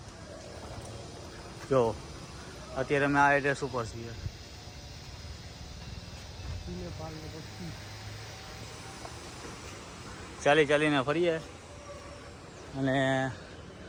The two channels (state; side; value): identical; both; correlation 1.00